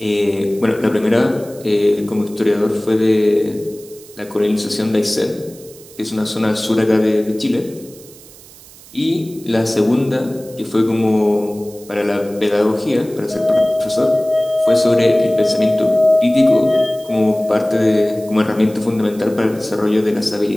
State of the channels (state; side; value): noise; right; hiss, 22 dB below the sound